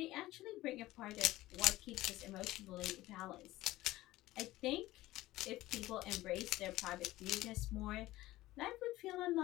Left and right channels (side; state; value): right; quieter; 17.0 dB